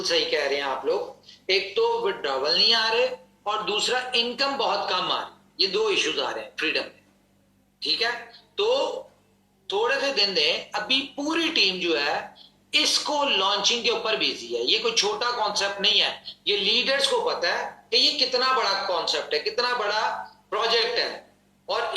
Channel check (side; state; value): both; identical; correlation 1.00